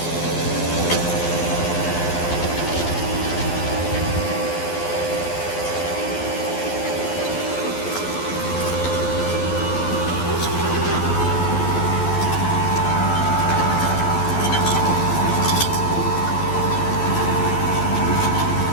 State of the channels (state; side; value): late; right; 12 ms